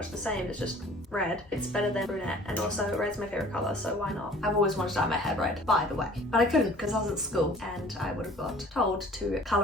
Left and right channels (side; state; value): both; normal; correlation 0.49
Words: the same, it's just red. It's better than brunette, and also red's my favorite color, so why not? I've always wanted to dye my hair red, by the way, but I couldn't because I was at school and I would have got told to